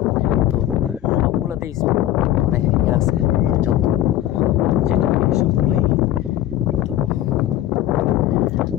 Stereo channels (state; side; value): quieter; right; 13.1 dB